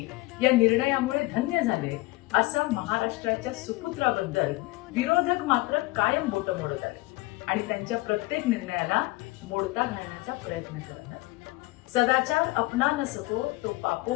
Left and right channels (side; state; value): right; quieter; 21.0 dB